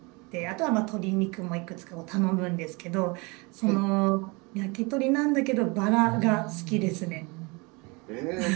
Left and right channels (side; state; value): left; quieter; 27.7 dB